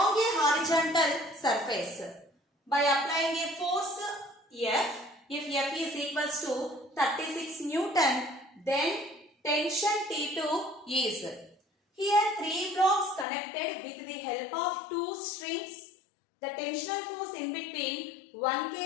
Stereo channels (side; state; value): right; drops out; at 13.2 s